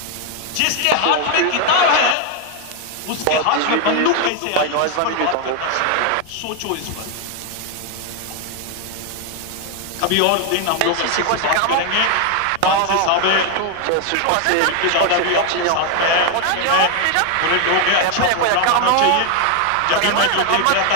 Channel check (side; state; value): both; different; correlation 0.01